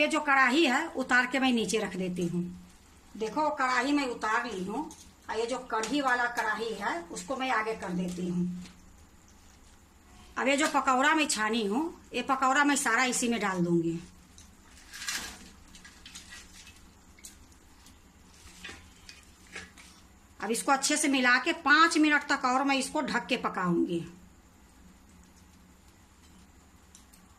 जो कढ़ाई है उतार के मैं नीचे रख देती हूँ। देखो कढ़ाई मैं उतार ली हूँ। और ये जो कढ़ी वाला कढ़ाई है उसको मैं आगे कर देती हूँ। अब ये जो पकौड़ा मैं छानी हूँ ये पकौड़ा मैं सारा इसी में डाल दूंगी। अब इसको अच्छे से मिला के 5 मिनट तक और मैं इसको ढक के पकाऊंगी।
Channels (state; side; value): identical; both; correlation 1.00